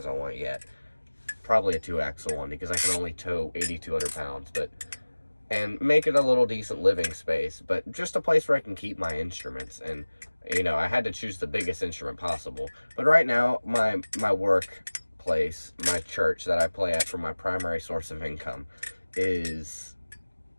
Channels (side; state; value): both; inverted; correlation -1.00